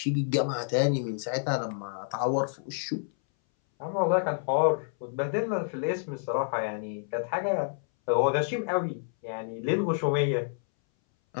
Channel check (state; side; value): silent; right; 59 dB below the other